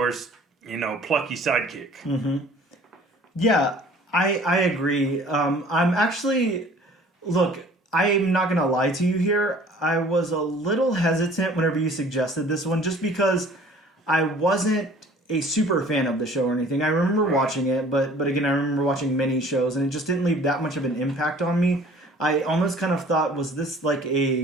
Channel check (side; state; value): both; normal; correlation 0.51